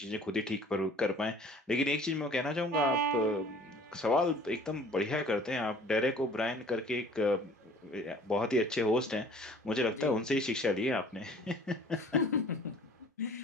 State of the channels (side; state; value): both; normal; correlation 0.50